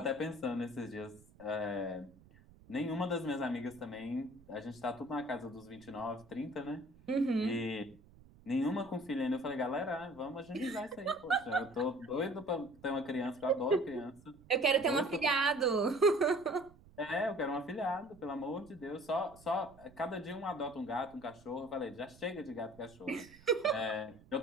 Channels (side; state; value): right; noise; rumble, 24 dB below the sound